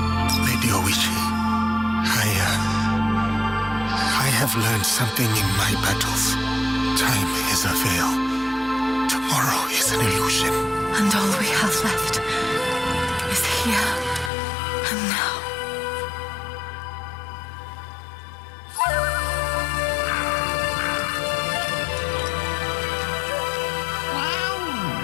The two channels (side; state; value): right; drops out; at 14.3 s